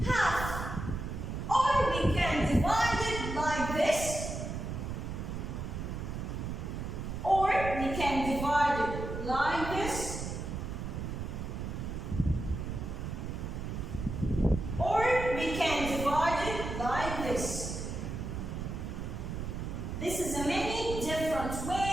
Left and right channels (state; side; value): noise; right; rumble, 5 dB below the sound